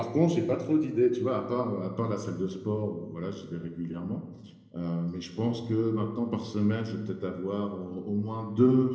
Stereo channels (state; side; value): identical; both; correlation 1.00